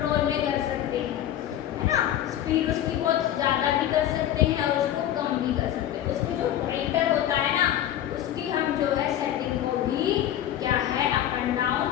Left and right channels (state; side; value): quieter; right; 11.7 dB